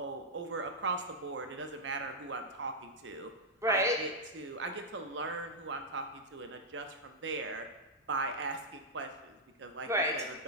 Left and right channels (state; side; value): normal; both; correlation -0.05